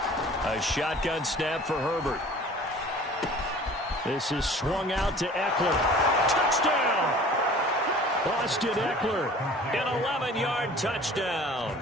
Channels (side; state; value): both; normal; correlation 0.46